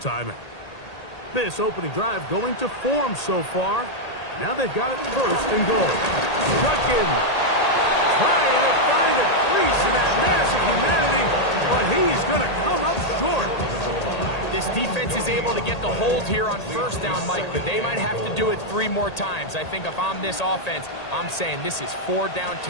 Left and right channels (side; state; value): right; late; 1.8 ms